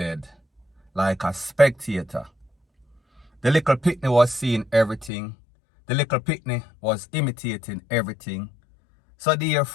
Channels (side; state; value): right; drops out; at 5.1 s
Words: like a spectator. The little picnic was seeing everything. The little picnic was imitating everything. So